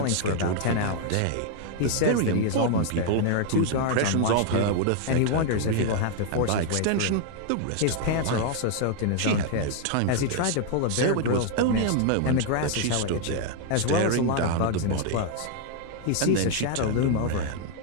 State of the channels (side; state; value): both; different; correlation 0.00